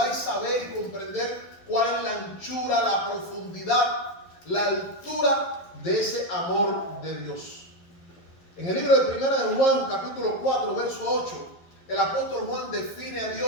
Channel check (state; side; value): late; right; 12 ms